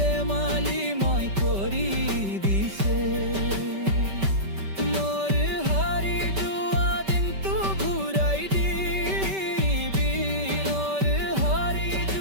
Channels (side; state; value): left; late; 5.2 ms